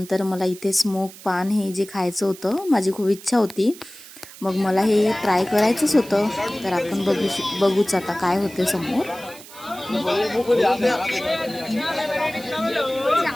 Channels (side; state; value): right; noise; hiss, 18 dB below the sound